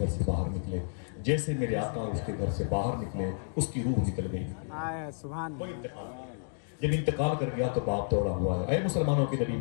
से बाहर निकले, जैसे मेरे आका उसके घर से बाहर निकले उसकी रूह निकल गई। सुभान अल्लाह। जब इंतकाल कर गया तो बाप दौड़ा हुआ है, ऐ मुसलमानों के नबी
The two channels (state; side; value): silent; right; digital silence